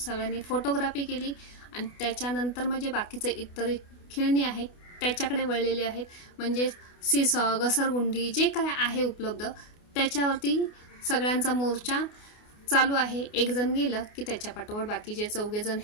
फोटोग्राफी केली आणि त्याच्यानंतर म्हणजे बाकीचे इतर खेळणी आहेत त्याच्याकडे वळलेले आहेत। म्हणजे सीसॉ, घसरगुंडी जे काय आहे उपलब्ध त्याच्यावरती सगळ्यांचा मोर्चा चालू आहे। एक जण गेलं की त्याच्या पाठोपाठ बाकीचे 4 जण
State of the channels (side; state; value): right; late; 28 ms